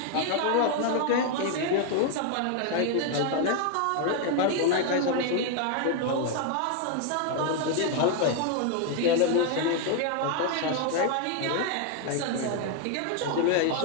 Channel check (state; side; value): different; both; correlation 0.00